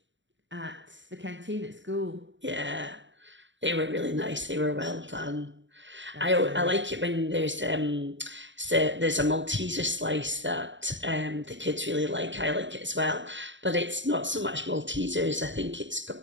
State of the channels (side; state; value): left; late; 0.54 ms